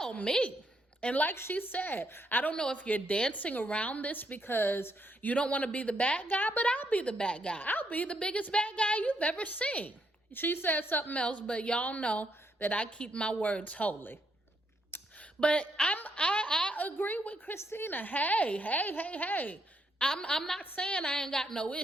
me. And like she said, I don't know if you're dancing around this because you don't want to be the bad guy, but I'll be the bad guy. I'll be the biggest bad guy you've ever seen. She said something else, but y'all know that I keep my words holy. But I agree with Christina. Hey. I'm not saying I ain't got no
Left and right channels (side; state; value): both; normal; correlation 0.75